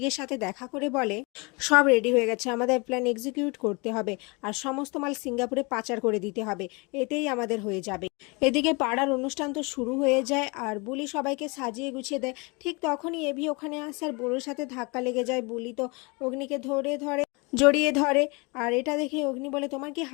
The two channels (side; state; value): right; quieter; 28.7 dB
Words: সাথে দেখা করে বলে সব রেডি হয়ে গেছে, আমাদের প্ল্যান এক্সিকিউট করতে হবে আর সমস্ত মাল সিঙ্গাপুরে পাচার করে দিতে হবে, এতেই আমাদের হয়ে যাবে। এদিকে পাড়ার অনুষ্ঠান তো শুরু হয়ে যায় আর বুলি সবাইকে সাজিয়ে গুছিয়ে দেয়। ঠিক তখনই এভি ওখানে আসে আর বুড়োর সাথে ধাক্কা লেগে যায়। বুলি তো অগ্নিকে জড়িয়ে ধরে আর এটা দেখে অগ্নি বলে তোমার কি